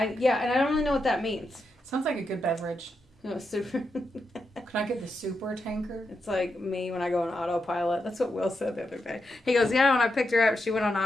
and I don't really know what that means. Sounds like a good beverage. No, super. Can I get the super tanker? It's like me when I go on autopilot. That's what Will said the other day. He goes, yeah, when I picked her up, she went on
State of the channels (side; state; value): both; normal; correlation 0.85